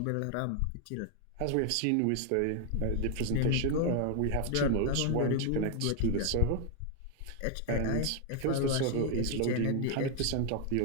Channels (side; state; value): both; different; correlation 0.00